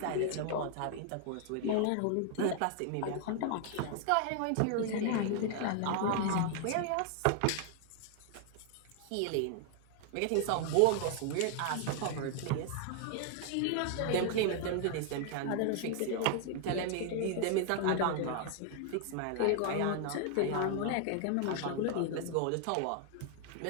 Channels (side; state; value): both; different; correlation 0.00